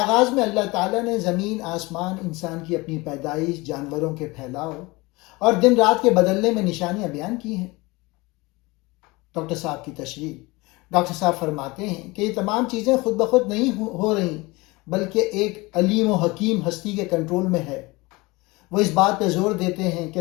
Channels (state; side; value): quieter; right; 23.3 dB